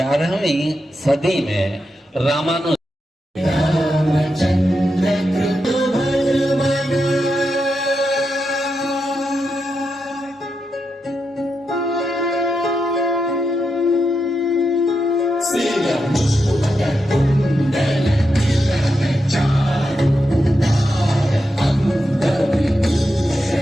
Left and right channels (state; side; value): normal; both; correlation 0.86